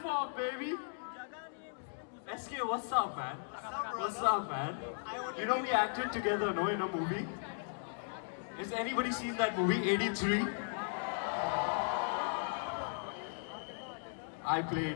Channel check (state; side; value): silent; right; digital silence